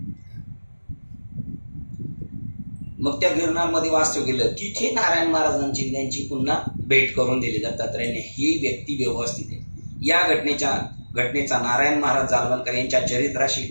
मग त्या गिरनार मध्ये वास्तव केलं. तिथे नारायण महाराजांची त्यांची पुन्हा भेट करून दिली दत्तात्रयाने. ही व्यक्ती व्यवस्थित आहे. या घटनेचा नारायण महाराज जालवणकर यांच्या चरित्राशी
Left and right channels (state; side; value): inverted; both; correlation -1.00